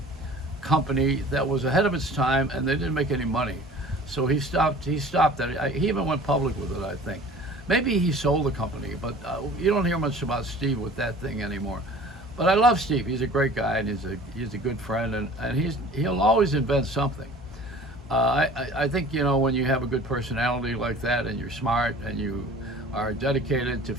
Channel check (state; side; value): normal; both; correlation 0.45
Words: company that was ahead of its time, and they didn't make any money. So he stopped. He stopped that. He even went public with it, I think. Maybe he sold the company, but you don't hear much about Steve with that thing anymore. But I love Steve. He's a great guy, and he's a good friend, and he'll always invent something. I think when you have a good personality like that, and you're smart, and you are dedicated to